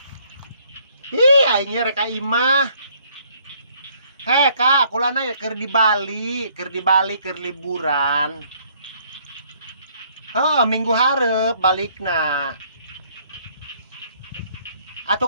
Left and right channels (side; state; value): both; inverted; correlation -0.64